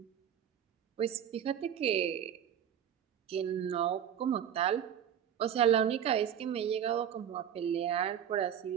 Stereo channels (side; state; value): left; quieter; 9.3 dB